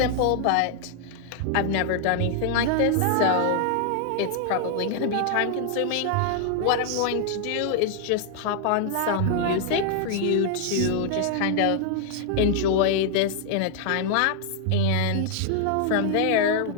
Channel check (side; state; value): both; different; correlation 0.00